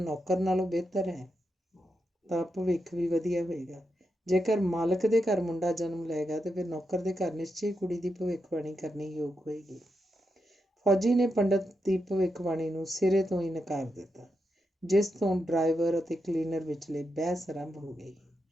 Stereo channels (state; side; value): normal; both; correlation 0.85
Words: ਨੌਕਰ ਨਾਲੋਂ ਬਿਹਤਰ ਹੈ ਤਾਂ ਭਵਿੱਖ ਵੀ ਵਧੀਆ ਹੋਏਗਾ। ਜੇਕਰ ਮਾਲਕ ਦੇ ਘਰ ਮੁੰਡਾ ਜਨਮ ਲਏਗਾ ਤੇ ਫਿਰ ਨੌਕਰ ਦੇ ਘਰ ਨਿਸ਼ਚੇ ਕੁੜੀ ਦੀ ਭਵਿੱਖਬਾਣੀ ਕਰਨੀ ਯੋਗ ਹੋਏਗੀ। ਫੌਜੀ ਨੇ ਪੰਡਤ ਦੀ ਭਵਿੱਖਬਾਣੀ ਨੂੰ ਸਿਰੇ ਤੋਂ ਹੀ ਨਕਾਰ ਦਿੱਤਾ, ਜਿਸ ਤੋਂ ਡਰਾਈਵਰ ਅਤੇ ਕਲੀਨਰ ਵਿਚਲੇ ਬਹਿਸ ਆਰੰਭ ਹੋ ਗਈ।